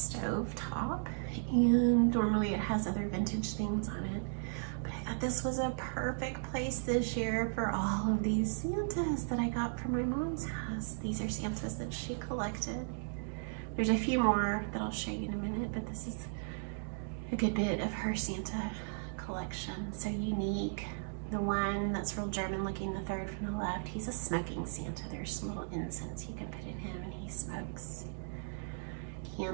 top, and normally it has other vintage things on it. But I thought this was a perfect place this year for all of these Santas that I got from my mom's house. These are Santas that she collected. There's a few more that I'll show you in a minute, but this is a good bit of her Santa collection. So unique. The one that's real German looking, the third from the left, he's a smoking Santa. There's some little incense you can put in him and he smokes.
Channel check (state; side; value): silent; left; digital silence